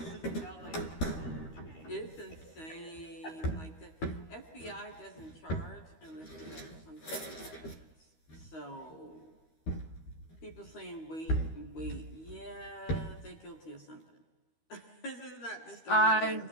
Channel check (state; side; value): late; right; 13 ms